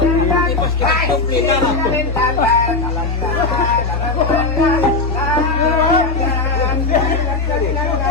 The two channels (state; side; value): quieter; right; 3.6 dB